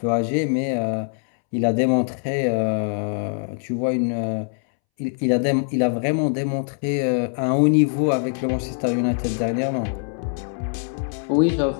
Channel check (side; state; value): right; silent; 64 dB below the other